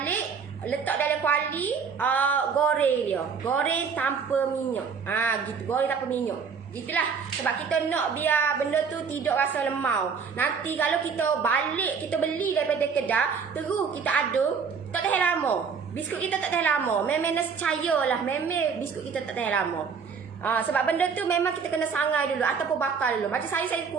letak dalam kuali, goreng dia. Goreng tanpa minyak. Gitu, goreng tanpa minyak. Gitulah. Sebab kita nak biar benda tu tidak rasa lemau. Nanti kalau kita balik, kita beli daripada kedah, terus kita aduk, tak tahan lama. Biskut kita tak tahan lama. Memang nescaya lah. Memang biskut kita tak tahan lama. Sebab benda tu memang kita kena sangai dulu ataupun bakar dulu. Macam saya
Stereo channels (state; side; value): quieter; left; 5.9 dB